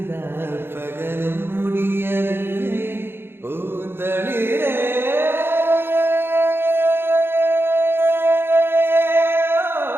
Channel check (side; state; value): left; late; 0.11 ms